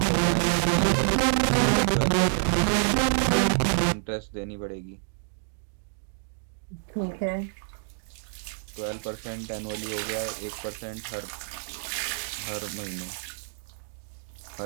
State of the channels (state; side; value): silent; left; digital silence